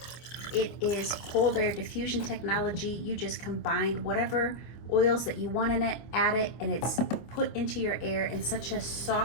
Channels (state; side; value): late; right; 25 ms